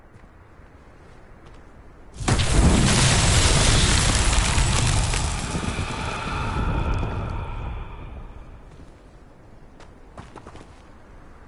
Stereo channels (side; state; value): both; identical; correlation 1.00